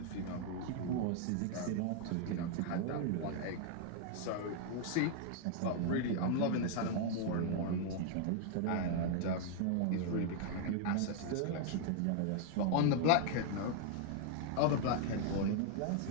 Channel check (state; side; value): different; both; correlation 0.00